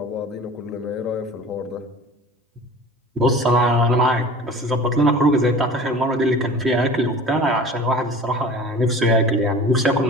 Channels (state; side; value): normal; both; correlation 0.41